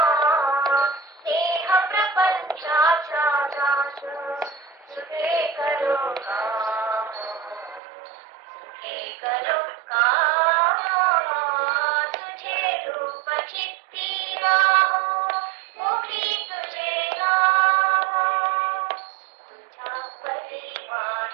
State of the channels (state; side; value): drops out; left; at 7.8 s